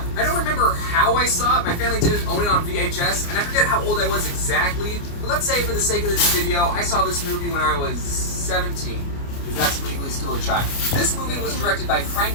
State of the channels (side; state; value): right; late; 29 ms